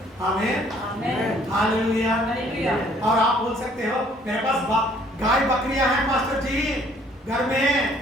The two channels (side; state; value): both; normal; correlation 0.60